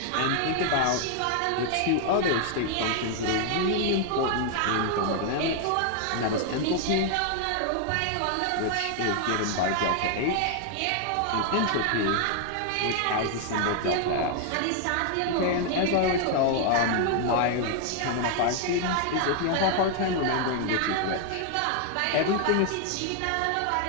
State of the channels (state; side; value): different; both; correlation 0.00